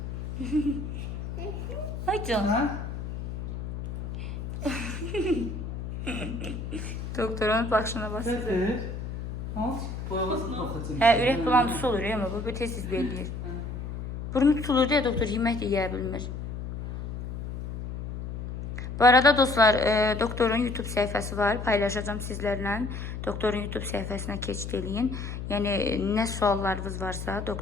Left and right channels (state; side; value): noise; left; hum, 7 dB below the sound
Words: Ay can. Ha? Doktorun başına basır. Gətir. Al. Boyavasını baxacağım. Hə, ürək bulantısı olur ya, amma bu tez-tez belirləyir. Burnu tutulur deyə doktor yemək də yeyə bilmir. Bu arada dostlar, doktorun YouTube səhifəsi var. Paylaşacağım sizlərlə. Doktorun YouTube səhifəsinə keçid eləyin. Yəni, nə suallarınız varsa,